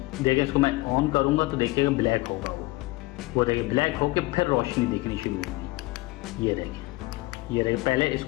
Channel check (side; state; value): right; quieter; 21.4 dB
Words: देखें, इसको मैं ऑन करूँगा तो देखिएगा ब्लैक होगा वो देखिए ब्लैक होके फिर रोशनी दिखनी शुरू होगी। ये देखिए, ये देखिए, पहले